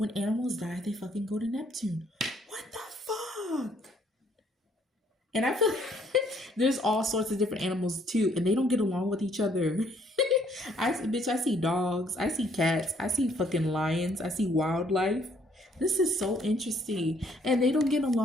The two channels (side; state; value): both; normal; correlation 0.65